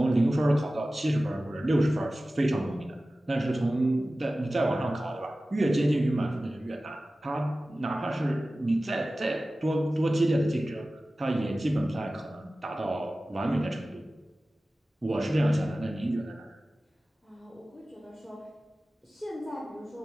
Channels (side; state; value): both; normal; correlation 0.96